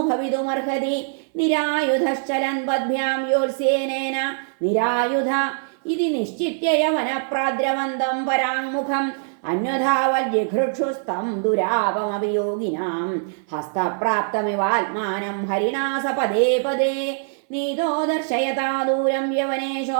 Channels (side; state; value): left; silent; 58 dB below the other